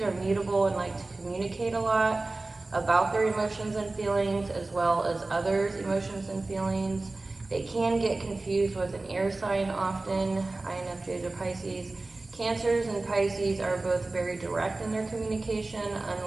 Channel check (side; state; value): left; quieter; 3.2 dB